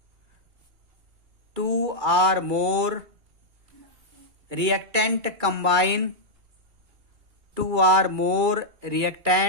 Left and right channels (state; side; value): late; left; 2.3 ms